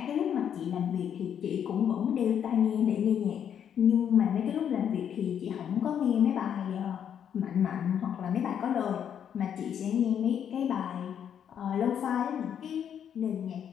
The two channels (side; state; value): right; quieter; 8.7 dB